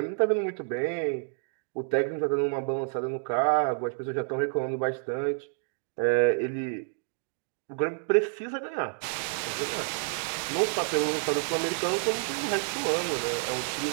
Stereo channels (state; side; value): silent; left; digital silence